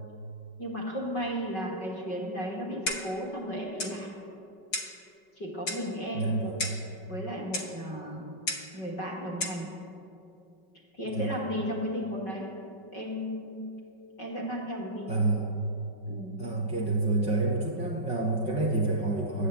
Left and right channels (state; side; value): late; right; 5.3 ms